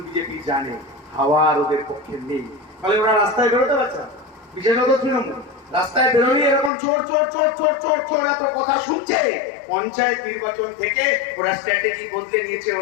BJP জানে হাওয়ার ওদের পক্ষে নেই, ফলে ওরা রাস্তায় বেরোতে পারছে না। বিশেষত তৃণমূল রাস্তায় বেরোলে এরকম চোর চোর চোর চোর চোর চোর এত কথা শুনছে। পঞ্চায়েত নির্বাচন থেকে ওরা স্ট্র্যাটেজি বদলে নিয়েছে,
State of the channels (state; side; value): drops out; right; at 6.7 s